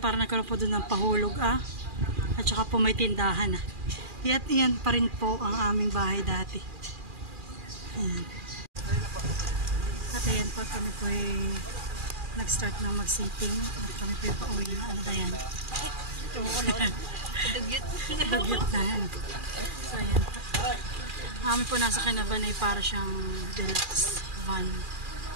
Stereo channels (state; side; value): late; left; 2.4 ms